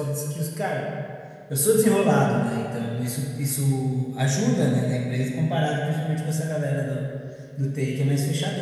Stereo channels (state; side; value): identical; both; correlation 1.00